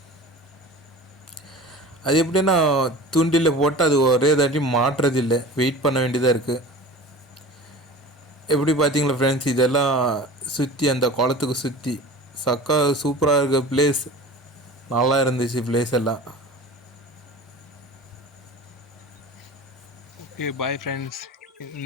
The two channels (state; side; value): normal; both; correlation 0.38